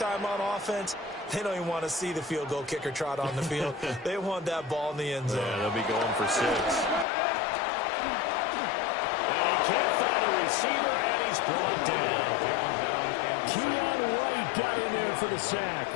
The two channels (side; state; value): right; drops out; at 7.1 s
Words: on offense, they don't even want to see the field goal kicker trot on the field. They want that ball in the end zone. Yeah, they'll be going for 6. And he can't find a receiver, and he's brought down. Keon White got in there for the sack.